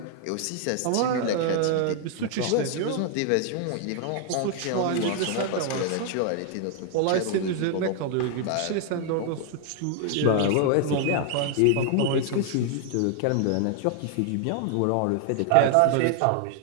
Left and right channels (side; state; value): both; different; correlation 0.00